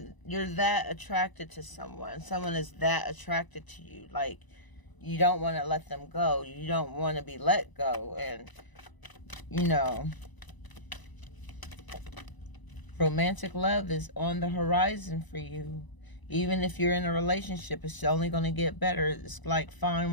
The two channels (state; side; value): late; right; 1.0 ms